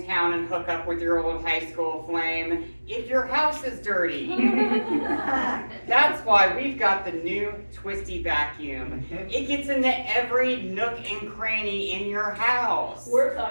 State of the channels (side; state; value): both; inverted; correlation -1.00